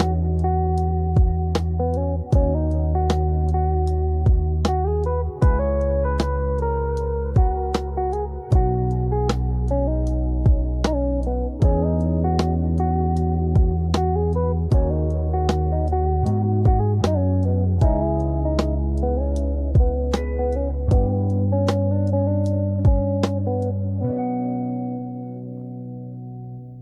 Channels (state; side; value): identical; both; correlation 1.00